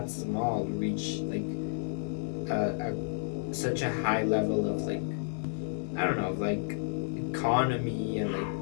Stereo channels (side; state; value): right; silent; 57 dB below the other